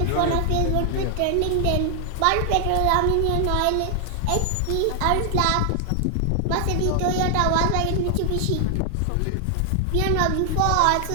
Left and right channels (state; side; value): different; both; correlation 0.00